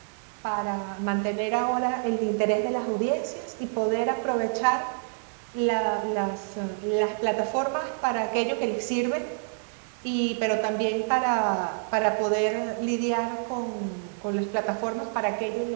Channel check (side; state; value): left; silent; 60 dB below the other